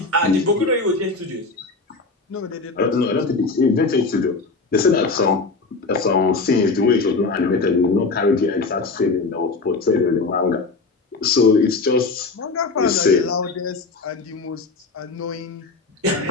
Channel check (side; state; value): right; quieter; 3.9 dB